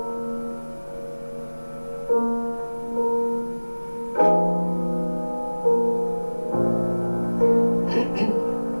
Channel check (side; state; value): both; inverted; correlation -1.00